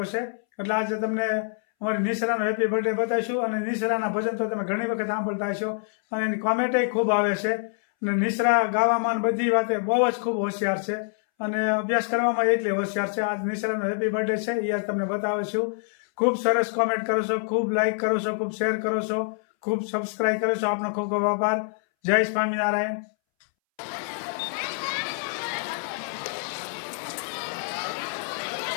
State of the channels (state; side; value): silent; right; 61 dB below the other